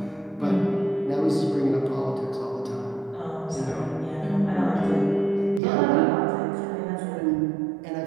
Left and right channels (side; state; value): left; drops out; at 5.6 s